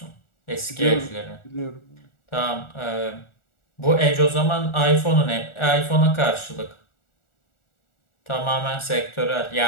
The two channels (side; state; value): right; late; 1.4 ms